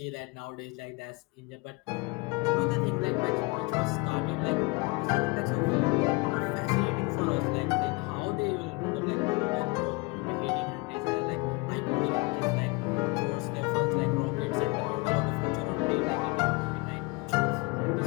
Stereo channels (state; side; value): quieter; right; 27.4 dB